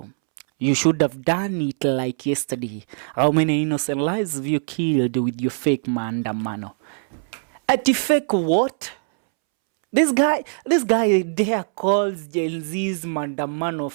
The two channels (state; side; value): silent; left; 64 dB below the other